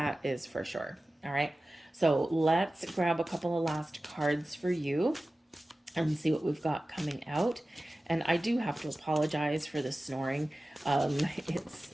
is for sure. All right. So let's grab a couple of last cards for you and see what we've got coming out. And I do have to apologize for the snoring.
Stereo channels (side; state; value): both; normal; correlation 0.96